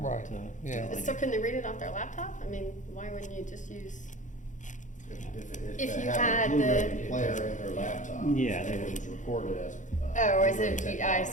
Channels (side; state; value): right; late; 0.36 ms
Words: Right, yeah. really- So can they read it off their laptop? I mean, why wouldn't you just use? If they you have had a Blu-ray the- player in their laptop. Yeah, they it would. was recorded as. Oh, is Blu-ray it, I technology.